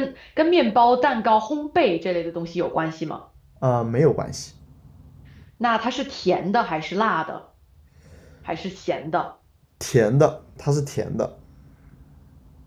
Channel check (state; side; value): identical; both; correlation 1.00